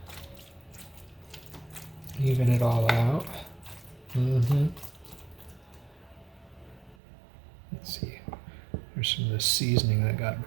even it all out. Let's see, there's some of this seasoning that got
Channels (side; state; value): left; drops out; at 7.0 s